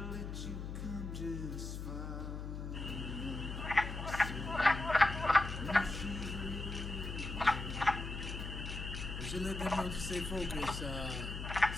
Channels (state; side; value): noise; left; hum, 6 dB below the sound